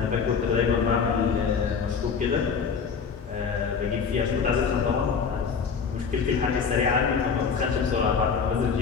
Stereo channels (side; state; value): right; quieter; 6.0 dB